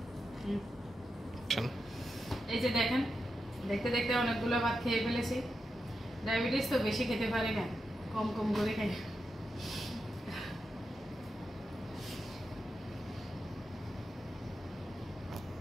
এই যে দেখেন, দেখতে দেখতে অনেকগুলো ভাত খেয়ে ফেলেছি। ডায়াবেটিস তো বেশি খেতে পারি না, কম কম করে খাই।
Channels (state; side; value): normal; both; correlation 0.88